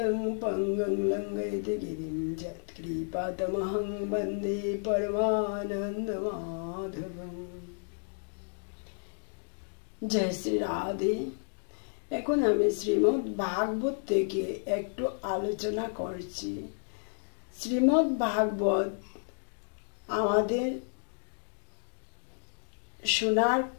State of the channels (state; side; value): silent; right; digital silence